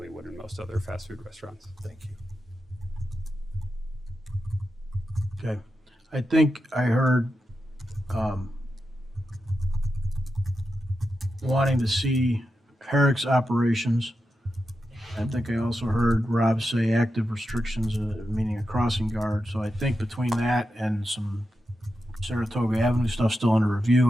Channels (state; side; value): normal; both; correlation 0.89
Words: would in most other fast food restaurants. Thank you. Okay, I think I heard wanting to see Herrick's operations. I think I also heard Rob say active restrictions, meaning a crossing guard. So I think between that and some Saratoga Avenue stuff still under